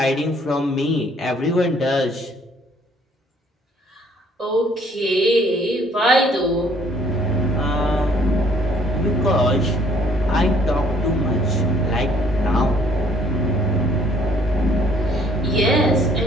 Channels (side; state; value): both; normal; correlation 0.61